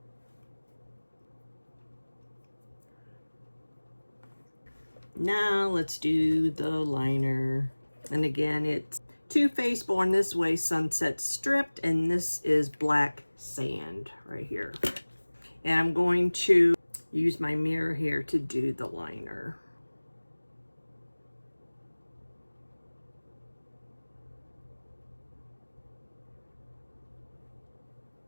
Now let's do the liner. And again, it's Too Faced Born This Way Sunset Stripped, and this is Black Sand right here. And I'm going to use my mirror here to do the liner.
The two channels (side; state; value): both; inverted; correlation -1.00